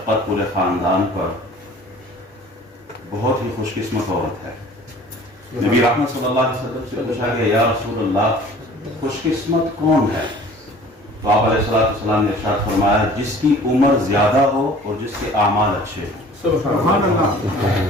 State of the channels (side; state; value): both; normal; correlation 0.48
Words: پورے خاندان پر، بہت ہی خوش قسمت عورت ہے. نبی رحمت صلی اللہ علیہ وسلم سے پوچھا گیا یا رسول اللہ خوش قسمت کون ہے؟ تو آپ علیہ السلام نے ارشاد فرمایا جس کی عمر زیادہ ہو اور جس کے اعمال اچھے ہوں. سبحان